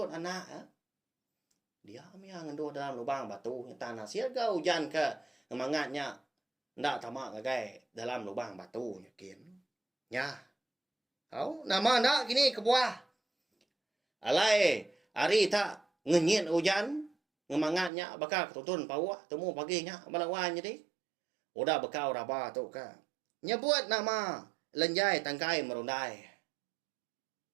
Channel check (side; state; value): left; drops out; at 17.9 s